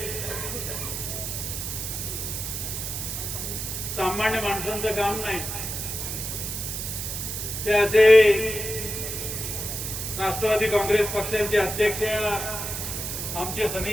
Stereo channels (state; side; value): noise; right; hiss, 4 dB below the sound